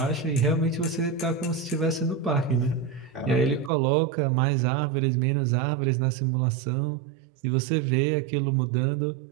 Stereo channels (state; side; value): drops out; left; at 3.7 s